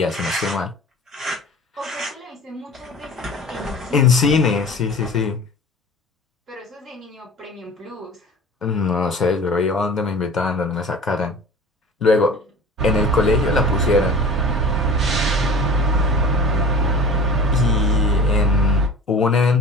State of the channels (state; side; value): normal; both; correlation 0.40